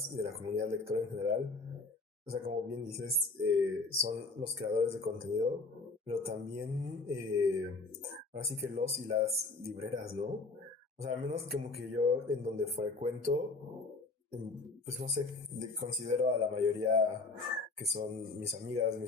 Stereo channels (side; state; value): right; quieter; 3.6 dB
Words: y de la comunidad lectora en general, o sea, como bien dices, son los creadores de contenido, pero también, ahora sí que los y las libreras, ¿no? O sea, al menos como que yo en donde frecuento, pues no sé, considero a la mayoría que son mis amigas,